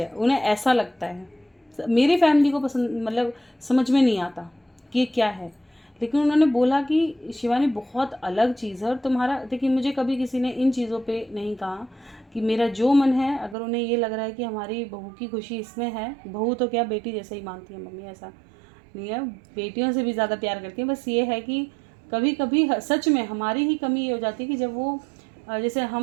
है, उन्हें ऐसा लगता है। मेरी फैमिली को पसंद, मतलब समझ में नहीं आता कि ये क्या है, लेकिन उन्होंने बोला कि शिवानी बहुत अलग चीज़ है। और तुम्हारा, देखिए, मुझे कभी किसी ने इन चीज़ों पे नहीं कहा कि मेरा जो मन है, अगर उन्हें ये लग रहा है कि हमारी बहू की खुशी इसमें है, बहू तो क्या बेटी जैसे ही मानती है मम्मी, ऐसा नहीं है, बेटियों से भी ज़्यादा प्यार करती हैं। बस ये है कि कभी कभी सच में हमारी ही कमी ये हो जाती है कि जब वो, जैसे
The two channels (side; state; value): left; drops out; at 13.6 s